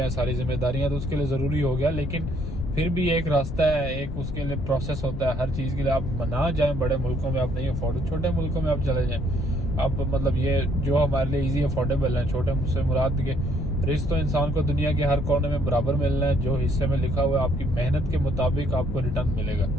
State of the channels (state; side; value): noise; left; rumble, 6 dB below the sound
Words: है सारी जिम्मेदारियां, तो उसके लिए ज़रूरी हो गया। लेकिन फिर भी एक रास्ता है, एक उसके लिए प्रोसेस होता है हर चीज़ के लिए। आप ना जाएं बड़े मुल्कों में, आप नहीं अफोर्ड, छोटे मुल्कों में आप चले जाएं। आप मतलब ये जो हमारे लिए इजी अफोर्डेबल है, छोटे मुझसे मुराद के रिस्क तो इंसान को दुनिया के हर कोने में बराबर मिलना है। जो हिस्से में लिखा हुआ है, आपकी मेहनत के मुताबिक आपको रिटर्न मिलेगा।